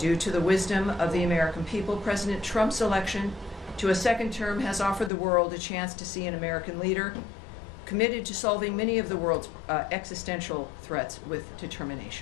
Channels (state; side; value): drops out; right; at 5.1 s